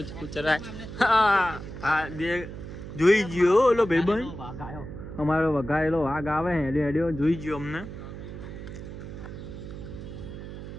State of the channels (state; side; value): noise; right; hum, 10 dB below the sound